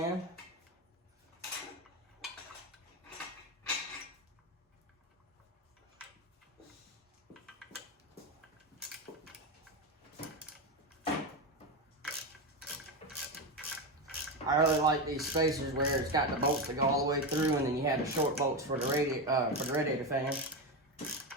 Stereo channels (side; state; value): both; normal; correlation 0.14